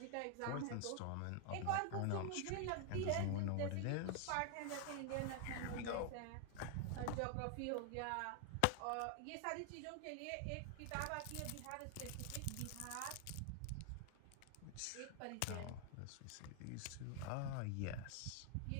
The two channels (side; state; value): both; different; correlation 0.00